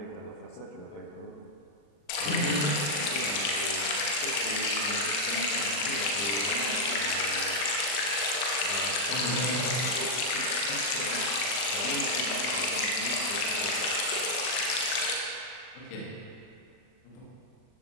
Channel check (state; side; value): late; right; 40 ms